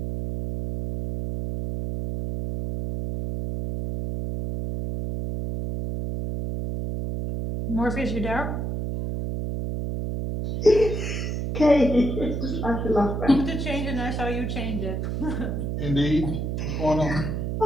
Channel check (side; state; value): right; noise; hum, 2 dB below the sound